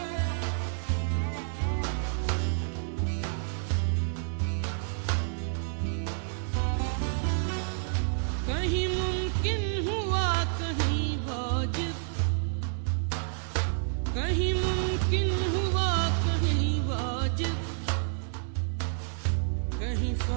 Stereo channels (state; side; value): silent; left; digital silence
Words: कहीं मुमकिन हुआ कहीं वाजिब, कहीं मुमकिन हुआ कहीं वाजिब, कहीं